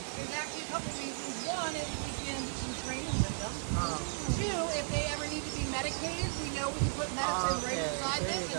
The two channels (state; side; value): silent; left; digital silence